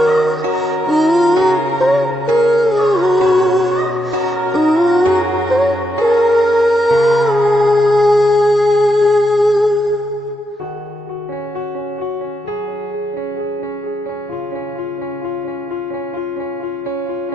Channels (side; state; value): both; normal; correlation 0.80